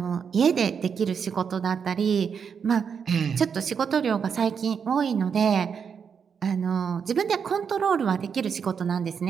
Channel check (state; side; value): quieter; left; 6.7 dB